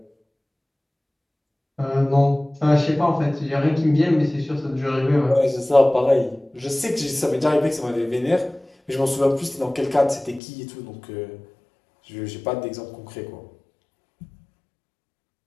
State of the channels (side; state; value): right; drops out; at 10.4 s